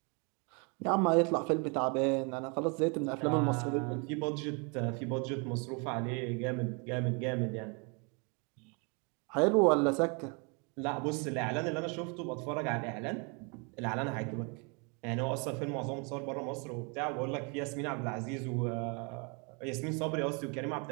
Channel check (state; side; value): quieter; left; 33.8 dB